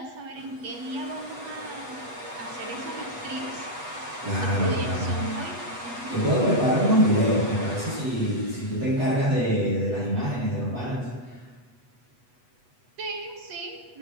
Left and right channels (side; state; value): left; late; 8.1 ms